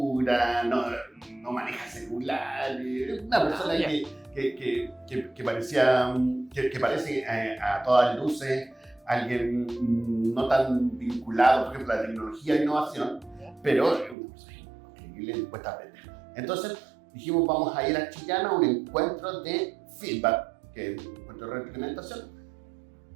no maneja celulares, una persona que parecía, que parece a todas luces alguien no tan vinculado, por ejemplo, a la tecnología e innovación, pero es una persona increíble, le cuesta aprender. Entonces dijimos, vamos a ir a Chillán a un encuentro de feedback, que es un encuentro de retroalimentación,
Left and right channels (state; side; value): drops out; left; at 14.2 s